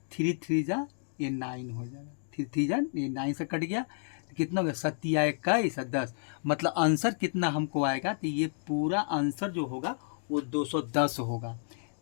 3 3 जा ये 9 हो जाएगा, 3 3 जा ये 9 से कट गया, तो कितना हो गया, 7 21 10, मतलब आंसर कितना हमको आएगा, तो ये पूरा आंसर जो होगा वो 210 होगा।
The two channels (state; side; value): silent; right; digital silence